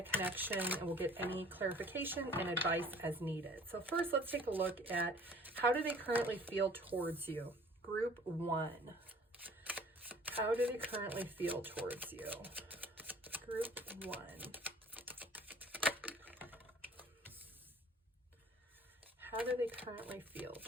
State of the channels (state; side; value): normal; both; correlation 0.51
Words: connection and we'll get any clarification and advice as needed. So first, let's take a look at how do they currently feel towards you? Group 1. How do they currently feel towards you? Group 1. How do they currently feel